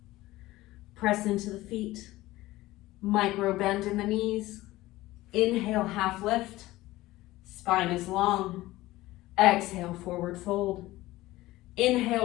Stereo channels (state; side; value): quieter; right; 17.6 dB